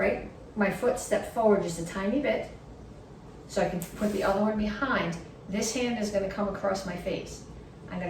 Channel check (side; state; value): both; identical; correlation 1.00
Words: foot, step forward just a tiny bit so I can put the other one behind. This hand is going to come across my face. I'm